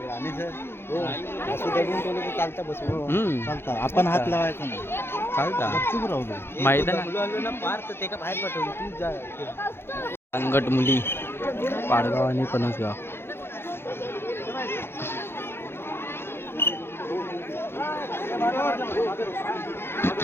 आपण हात लावायचा नाही चालता चुप राहू मैदान अंगट मुली पाडगाव आणि पणसगाव.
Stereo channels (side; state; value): right; late; 0.11 ms